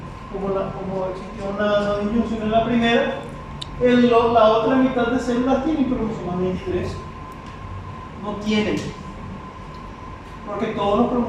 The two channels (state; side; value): identical; both; correlation 1.00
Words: Como existió una disyunción en la primera, la otra mitad de células tienen cromosomas 23. No tienen. Porque todos los